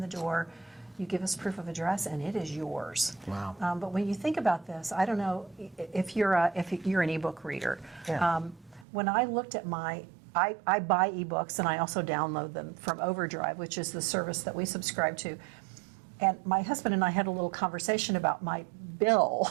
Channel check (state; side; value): drops out; left; at 8.8 s